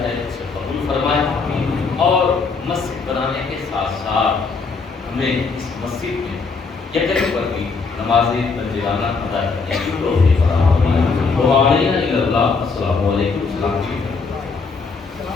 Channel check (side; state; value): right; quieter; 4.6 dB